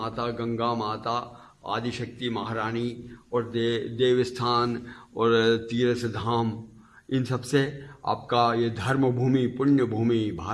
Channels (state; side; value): identical; both; correlation 1.00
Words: गंगा माता आदिशक्ति महारानी और देवस्थान और तीर्थ धाम इन सब से आपका ये धर्म भूमि पुण्य भूमि